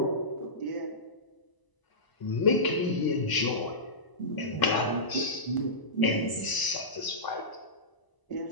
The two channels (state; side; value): late; right; 1.0 ms